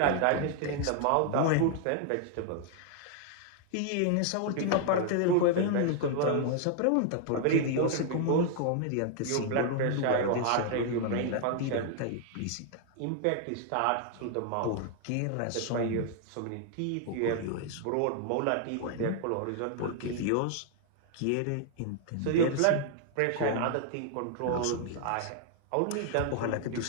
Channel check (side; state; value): both; different; correlation 0.00